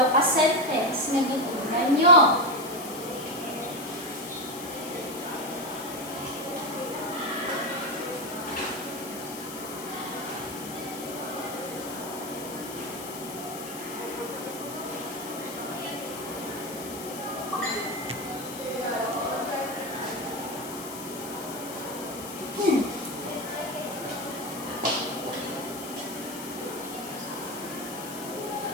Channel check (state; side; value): noise; left; hiss, 11 dB below the sound